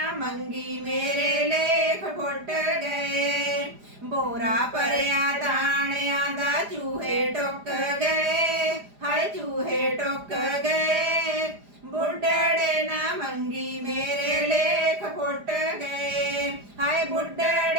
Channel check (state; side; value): late; left; 4.9 ms